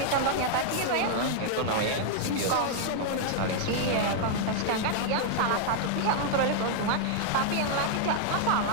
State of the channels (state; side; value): different; both; correlation -0.01